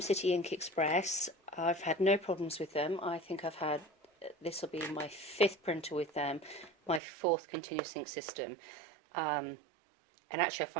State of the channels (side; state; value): left; drops out; at 7.0 s